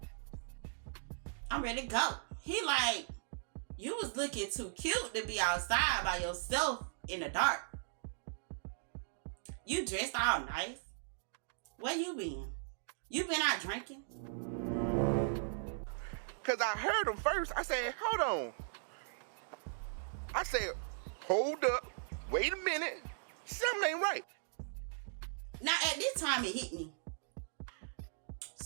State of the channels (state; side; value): silent; left; digital silence